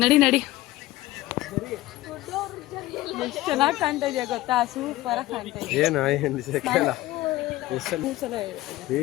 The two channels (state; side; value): quieter; right; 17.3 dB